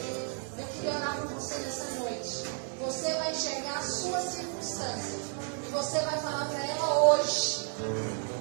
Eu queria orar com você nessa noite. Você vai enxergar a sua circunstância e você vai falar para ela hoje:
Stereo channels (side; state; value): left; quieter; 38.7 dB